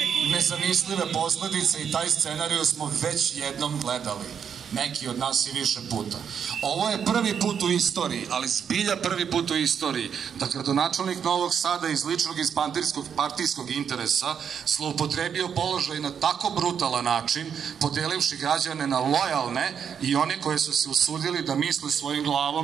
nezamislive posledice i taj scenariju smo već jednom gledali. Neki od nas i više puta. Ovo je prvi put u istoriji, ali zbilja prvi put u istoriji, da gradonačelnik Novog Sada iz ličnog i partijskog interesa zloupotrebio položaj na tako brutalan način, podelivši građane na lojalne i one koje su se usudili da misle svojim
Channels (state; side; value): quieter; left; 7.6 dB